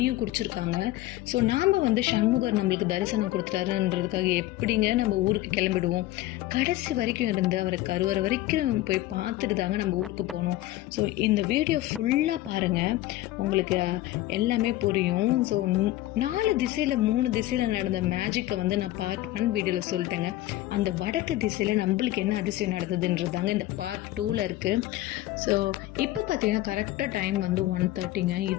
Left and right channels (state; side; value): quieter; right; 16.0 dB